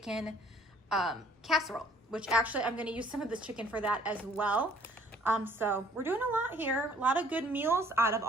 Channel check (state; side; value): normal; both; correlation 0.59